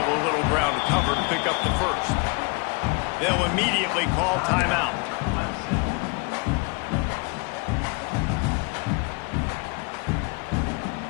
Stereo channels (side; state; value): right; quieter; 30.7 dB